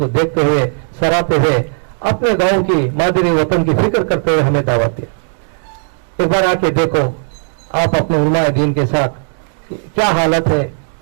देखते हुए, सराहते हुए, अपने गांव की, मादरी वतन की फिक्र करते हुए हमें दावत दिया। एक बार आके देखो आप अपने उलमाए दीन के साथ क्या हालत है।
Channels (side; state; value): left; silent; 69 dB below the other